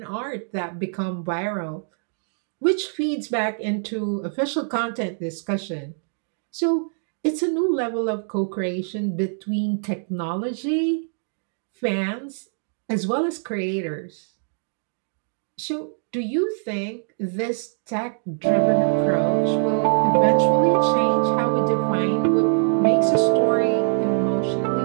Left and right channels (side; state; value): left; silent; digital silence